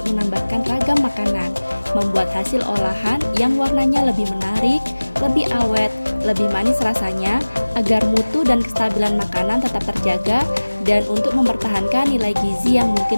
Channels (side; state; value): both; inverted; correlation -1.00